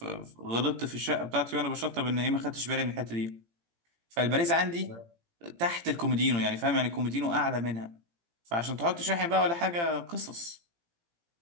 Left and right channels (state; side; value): late; left; 17 ms